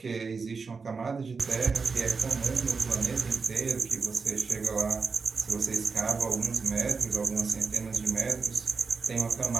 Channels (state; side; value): quieter; left; 4.9 dB